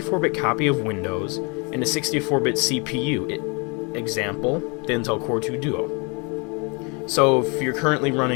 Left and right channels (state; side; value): quieter; right; 31.3 dB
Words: copy of Windows and a 64-bit CPU. Example, the Intel Core 2 Duo. So if you're currently